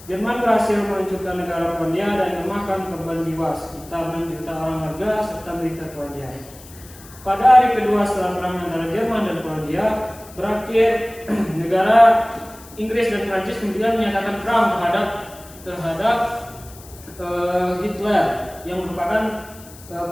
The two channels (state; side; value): noise; left; hiss, 20 dB below the sound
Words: Jerman berhasil menghancurkan negara Polandia dan memakan korban jiwa sekitar 6 juta orang warga serta militer Polandia. Pada hari kedua setelah perang antara Jerman dan Polandia berakhir, negara Inggris dan Prancis kemudian menyatakan perang terhadap Hitler yang merupakan